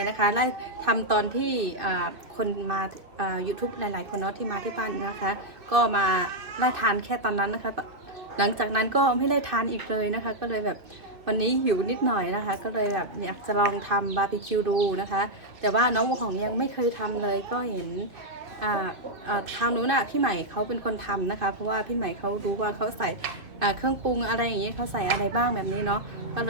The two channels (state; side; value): late; left; 2.7 ms